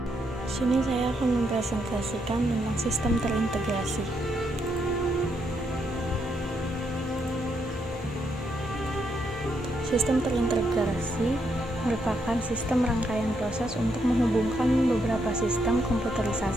Di sini saya akan mempresentasikan tentang sistem terintegrasi. Sistem terintegrasi merupakan sistem rangkaian proses untuk menghubungkan beberapa sistem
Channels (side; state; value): both; normal; correlation 0.77